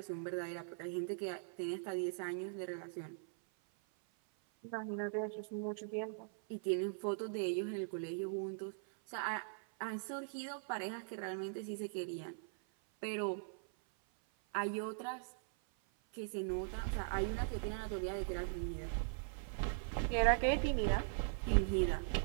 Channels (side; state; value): left; silent; 51 dB below the other